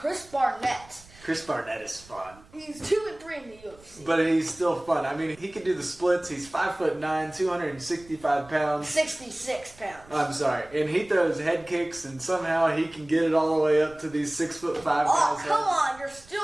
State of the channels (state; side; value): noise; right; rumble, 24 dB below the sound